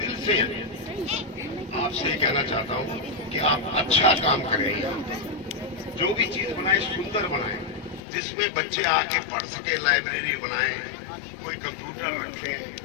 से आपसे कहना चाहता हूँ कि आप अच्छा काम करें। जो भी चीज बनाए सुंदर बनाए, जिसमें बच्चे आके पढ़ सके, लाइब्रेरी बनाए, कोई कंप्यूटर रखें।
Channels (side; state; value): right; drops out; at 8.0 s